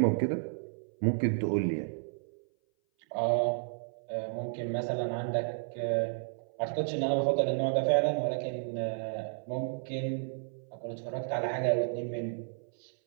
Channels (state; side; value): silent; left; 56 dB below the other